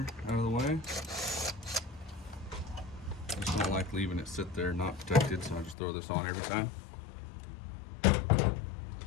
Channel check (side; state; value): right; drops out; at 5.8 s